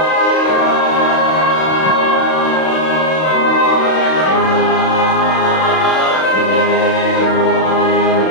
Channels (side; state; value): right; late; 32 ms